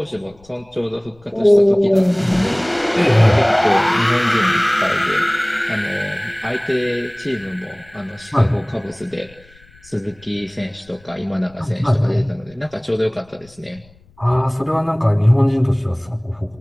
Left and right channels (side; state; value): left; noise; rumble, 28 dB below the sound